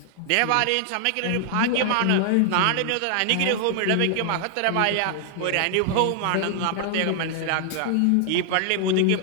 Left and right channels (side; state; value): both; different; correlation 0.00